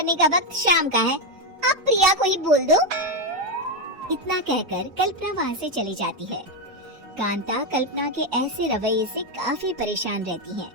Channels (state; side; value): late; left; 4.8 ms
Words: का वक्त शाम का है, अब प्रिया को ही बोल दो। इतना कहकर कल्पना वहाँ से चली जाती है। कांता कल्पना के ऐसे रवैये से काफी परेशान रहती है।